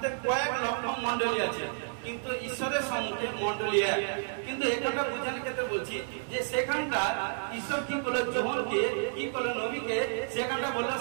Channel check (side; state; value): left; silent; digital silence